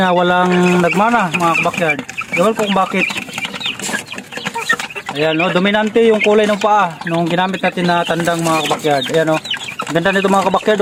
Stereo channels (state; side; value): identical; both; correlation 1.00